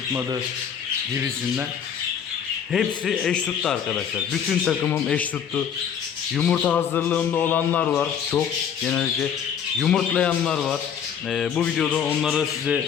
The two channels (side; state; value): right; quieter; 8.1 dB